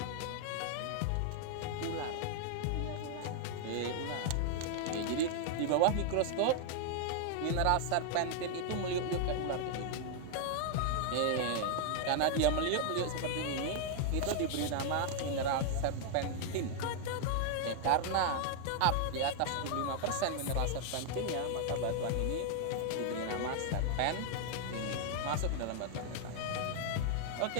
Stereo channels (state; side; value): different; both; correlation 0.00